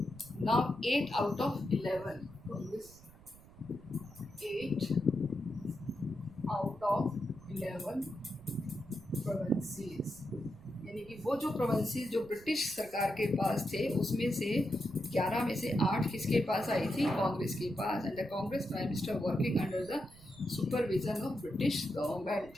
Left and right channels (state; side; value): noise; right; rumble, 21 dB below the sound